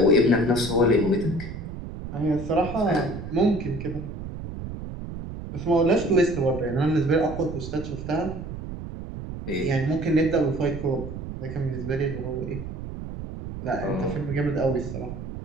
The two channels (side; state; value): right; noise; rumble, 9 dB below the sound